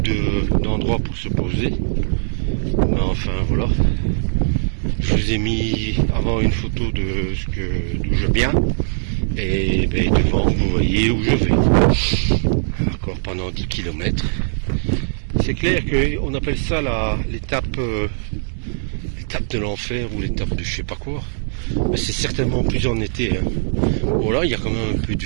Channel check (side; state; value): left; silent; digital silence